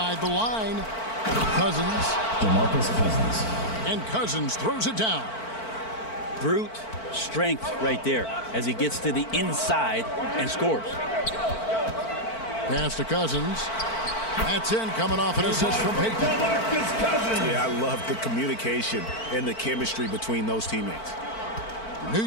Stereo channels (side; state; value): right; late; 4.5 ms